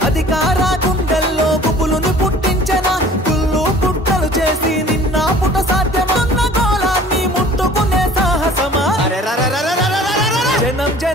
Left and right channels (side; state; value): both; normal; correlation 0.48